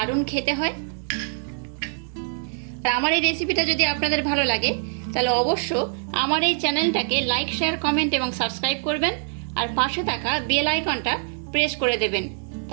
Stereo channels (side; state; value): left; silent; 62 dB below the other